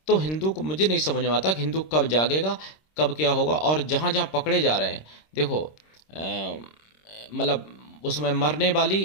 तो हिंदू को मुझे नहीं समझ में आता कि हिंदू कब जागेगा, कब क्या होगा। और जहाँ जहाँ पकड़े जा रहे हैं, देखो मतलब उसमें मरने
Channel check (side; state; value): right; late; 26 ms